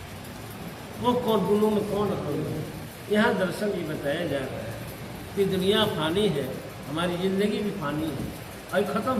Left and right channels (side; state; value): both; identical; correlation 1.00